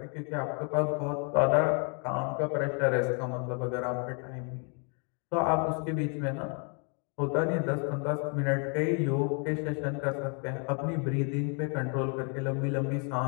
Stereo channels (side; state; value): right; quieter; 37.8 dB